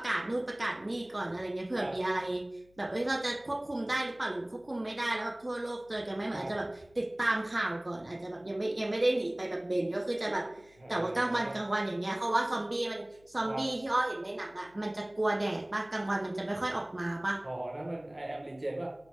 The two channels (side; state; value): left; noise; hum, 30 dB below the sound